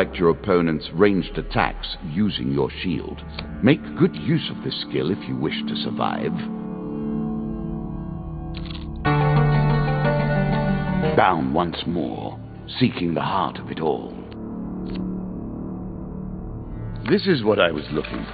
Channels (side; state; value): both; identical; correlation 1.00